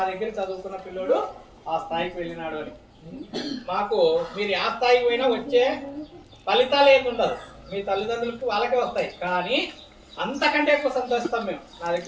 దగ్గర చదువుకున్న పిల్లోడు ఆ స్థాయికి వెళ్ళినాడు అని. మాకు మీరు ఆ స్థాయికి పోయినా వచ్చే ఫలితాలు ఏమి ఉండదు, మీ తల్లిదండ్రులకి వాళ్ళకే వస్తాయి. కానీ అంతకంటే ఎక్కువ సంతోషిస్తాం మేము.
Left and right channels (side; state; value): both; identical; correlation 1.00